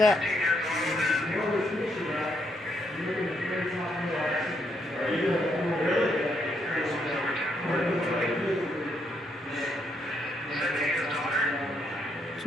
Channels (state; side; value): normal; both; correlation 0.76